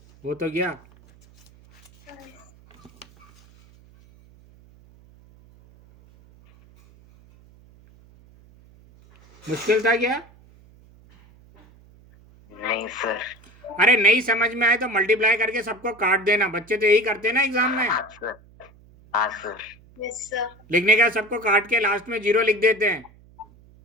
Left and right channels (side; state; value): right; noise; hum, 27 dB below the sound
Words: वो तो गया। मुश्किल था क्या? नहीं सर। अरे नहीं समझ में आए तो मल्टीप्लाई करके सबको काट देना, बच्चे तो यही करते हैं ना एग्जाम में। हाँ सर। हाँ सर। Yes sir. लिखने का सबको काट के लास्ट में 0 लिख देते हैं।